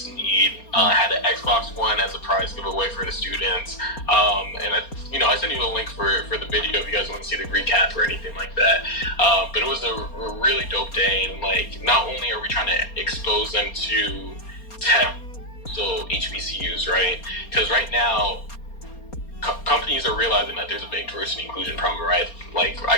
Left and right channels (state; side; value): late; right; 4.3 ms